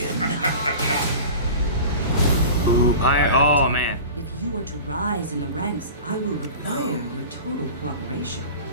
Ooh, pirate. Oh man. If you are to rise in the ranks, I will require your total cooperation.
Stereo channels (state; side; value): inverted; both; correlation -0.36